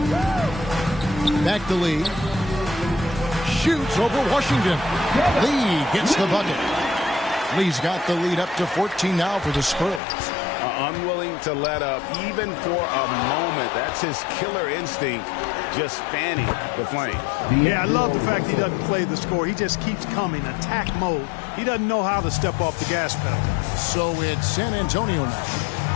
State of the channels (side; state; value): right; drops out; at 10.0 s